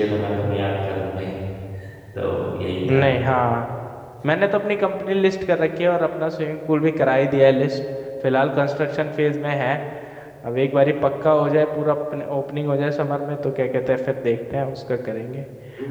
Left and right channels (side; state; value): both; identical; correlation 1.00